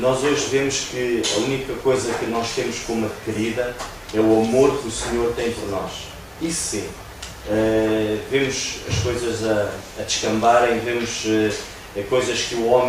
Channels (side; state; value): both; identical; correlation 1.00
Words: hoje vemos que a única coisa que nós temos como adquirida é o amor que o Senhor tem por nós. Isso sim. Vemos as coisas a descambarem, vemos coisas que o